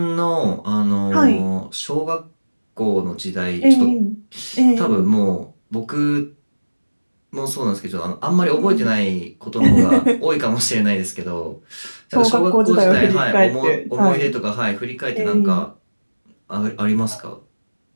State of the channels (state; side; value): inverted; both; correlation -1.00